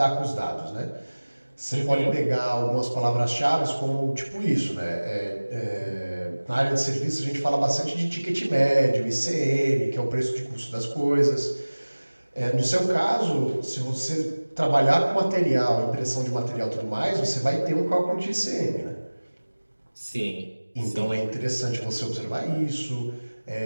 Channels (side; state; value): both; inverted; correlation -1.00